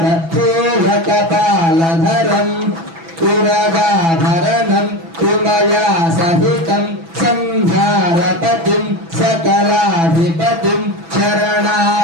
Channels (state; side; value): late; left; 6.0 ms